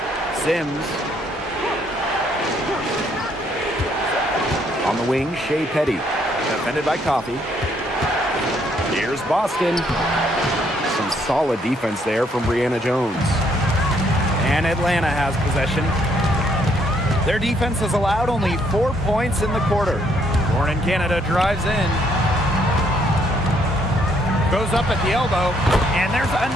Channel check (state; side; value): normal; both; correlation 0.69